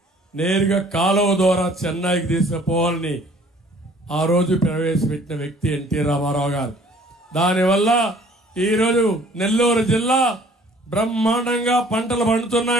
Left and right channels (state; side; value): normal; both; correlation 0.55